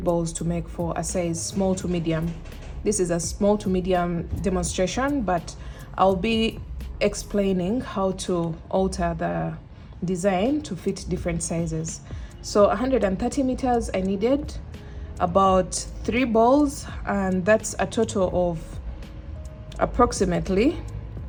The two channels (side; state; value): both; identical; correlation 1.00